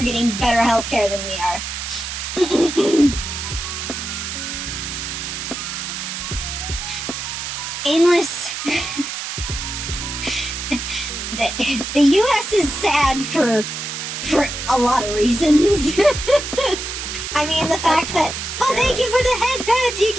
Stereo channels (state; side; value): noise; right; hiss, 5 dB below the sound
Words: getting better healthcare than we are. Aimless. The U.S. is sad for a lot of reasons. I mean, the fact that, oh, thank you for the head pats,